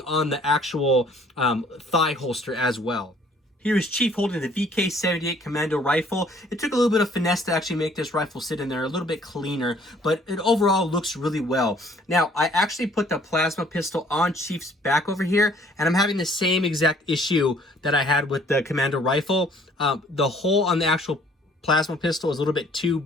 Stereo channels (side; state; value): both; normal; correlation 0.59